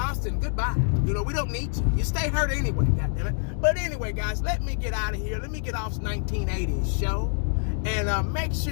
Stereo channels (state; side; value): silent; right; 58 dB below the other